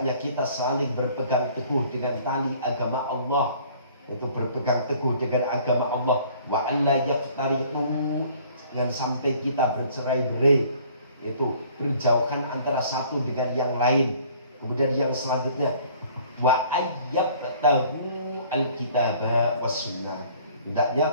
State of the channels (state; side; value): inverted; both; correlation -0.55